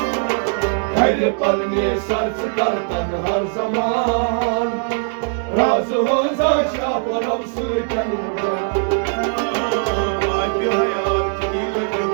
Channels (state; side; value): silent; left; 64 dB below the other